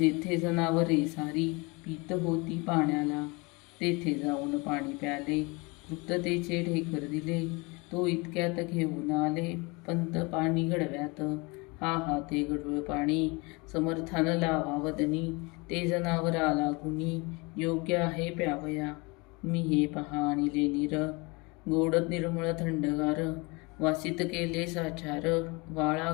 जनावरे सारी पीत होती पाण्याला. तेथे जाऊन पाणी प्याले तृप्ततेचे ढेकर दिले. तो इतक्यात घेऊन आले पंत पाणी गडव्यात. हा हा ते गडूळ पाणी समर्थान लावा वदनी. ते जनावरा लागुनी योग्य आहे प्यावया. मी हे पहा आणिले नीर गोड निर्मळ थंडगार. वासित केले साचार वाळा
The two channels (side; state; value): right; quieter; 27.3 dB